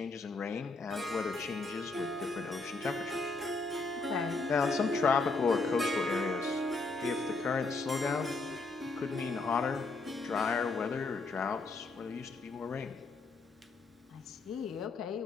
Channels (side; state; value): right; quieter; 3.6 dB